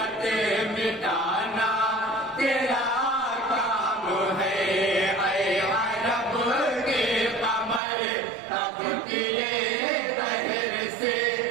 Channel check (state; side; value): drops out; left; at 7.8 s